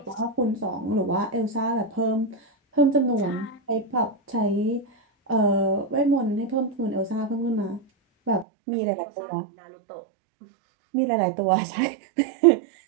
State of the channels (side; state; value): left; drops out; at 8.5 s